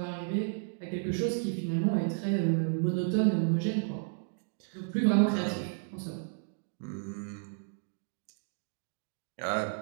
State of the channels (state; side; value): silent; left; digital silence